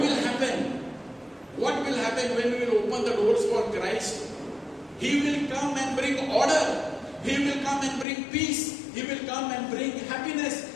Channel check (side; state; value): right; drops out; at 8.1 s